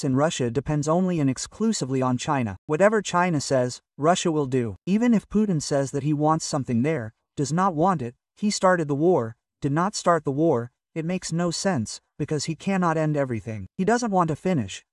in Russia depends only and exclusively on China. Whatever China says, Russia will do. Even if Putin says that he wants something there, does not want it, he started the war, did not start the war, it makes no sense, because he cannot end everything. He doesn't want to finish,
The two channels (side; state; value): both; identical; correlation 1.00